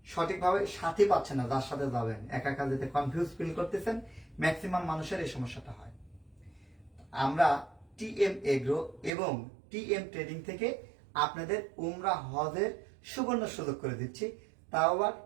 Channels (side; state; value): left; drops out; at 9.1 s